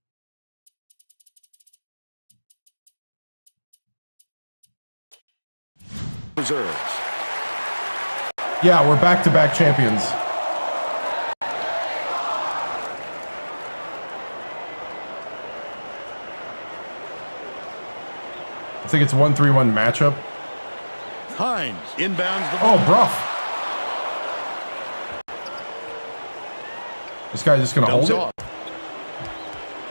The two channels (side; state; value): both; inverted; correlation -1.00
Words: Reserves. Yeah, we're back-to-back champions. I think it's 1-3-1 matchup. Hines inbounds the ball. Oh, Bruff. This guy's just going to hold it.